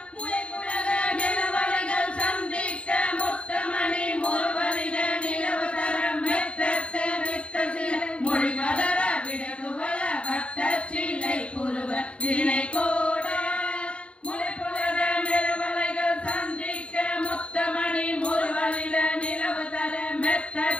நிலவலைகள் சந்திக்க முத்தமணி முருவலிட நிலவு தரம் மெத்தத்து வித்த சில மொழி பதற விடகுவல வட்ட சிலை புருவ வினை கோட முளைப்புலக நிலவலைகள் சந்திக்க முத்தமணி முருவலிட நிலவு தர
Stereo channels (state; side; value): late; right; 0.060 ms